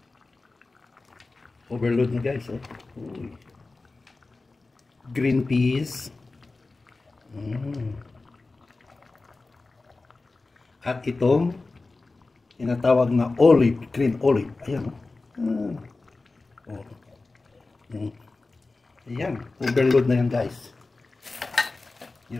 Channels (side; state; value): right; quieter; 3.5 dB